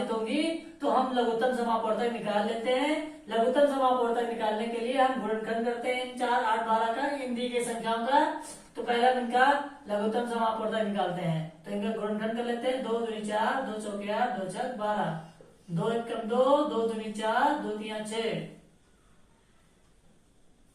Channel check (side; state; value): both; identical; correlation 1.00